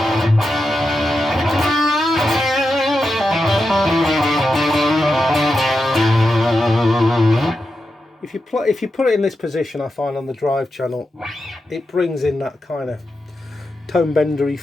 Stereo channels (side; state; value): both; normal; correlation 0.88